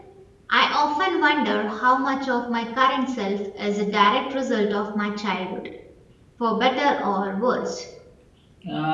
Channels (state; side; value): identical; both; correlation 1.00